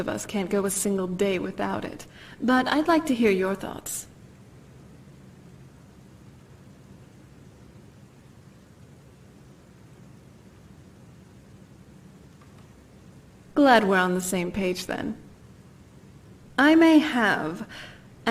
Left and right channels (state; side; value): identical; both; correlation 1.00